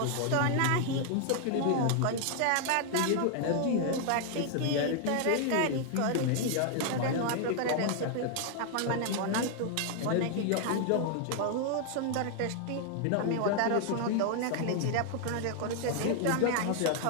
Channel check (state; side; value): different; both; correlation 0.00